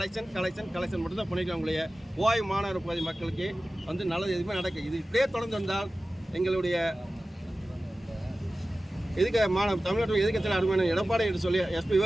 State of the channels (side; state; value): both; normal; correlation 0.96